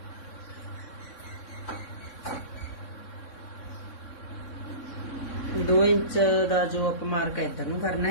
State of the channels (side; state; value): right; late; 3.6 ms